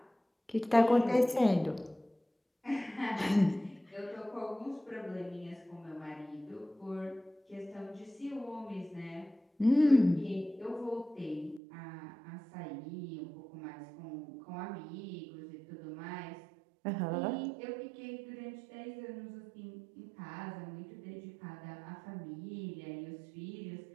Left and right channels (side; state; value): left; drops out; at 11.6 s